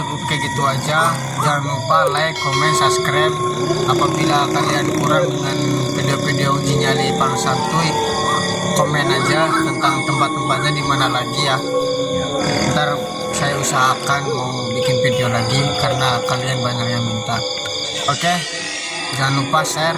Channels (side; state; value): both; identical; correlation 1.00